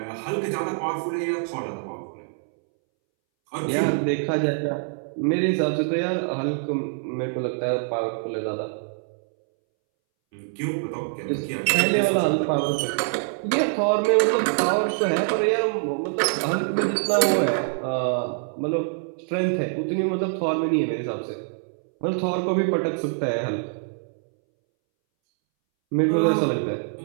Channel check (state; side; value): silent; left; 62 dB below the other